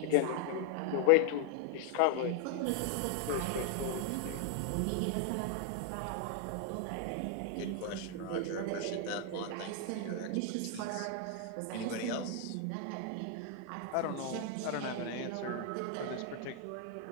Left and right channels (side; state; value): both; different; correlation 0.00